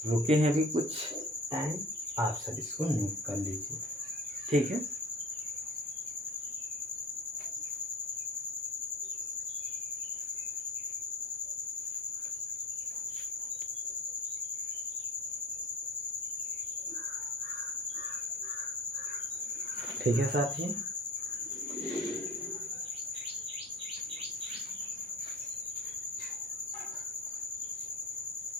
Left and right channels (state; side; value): normal; both; correlation 0.39